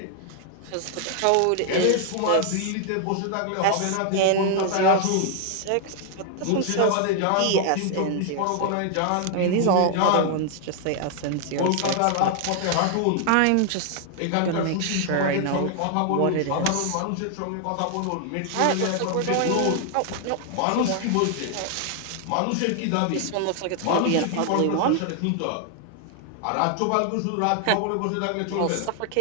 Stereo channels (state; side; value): different; both; correlation 0.00